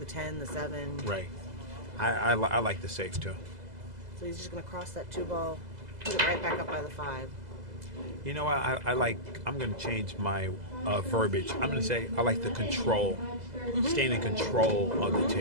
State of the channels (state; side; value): late; left; 2.0 ms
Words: 10, the 7. Right. I like the safe, too. So he's just going to cross that 2 ball, put it right back up by the 5. You know what? I'm going to change my verbiage. I'm going to say I like the control, staying in control of the